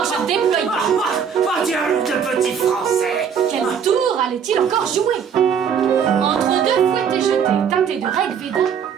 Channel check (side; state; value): left; quieter; 7.4 dB